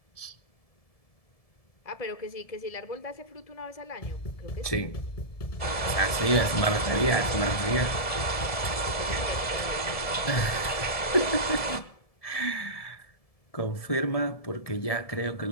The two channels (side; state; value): right; late; 1.7 ms